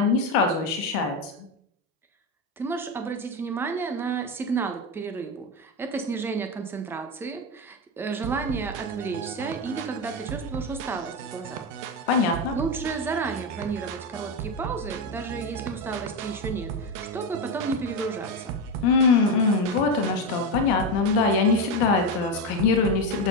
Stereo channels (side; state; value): both; normal; correlation 0.12